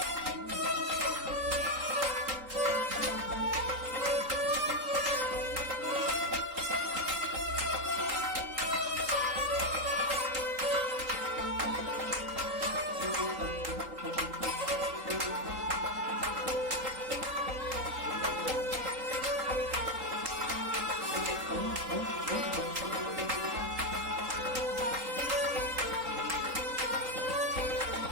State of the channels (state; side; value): late; left; 3.8 ms